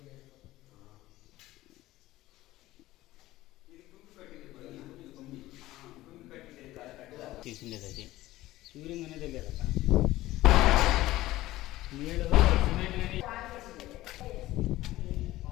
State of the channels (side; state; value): right; quieter; 16.6 dB